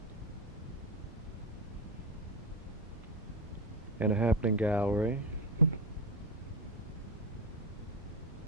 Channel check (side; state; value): both; normal; correlation 0.13